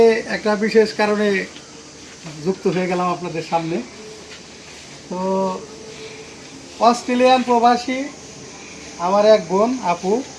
একটা বিশেষ কারণে যুক্ত হয়ে গেলাম আপনাদের সামনে। তো অস্ট্রেলিয়ান প্রবাসী আমার এক বোন আপু,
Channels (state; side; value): identical; both; correlation 1.00